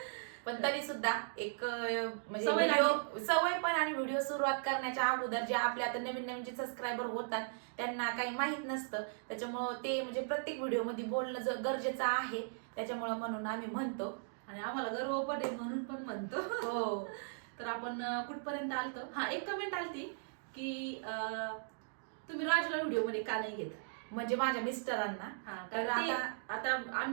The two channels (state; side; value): silent; left; digital silence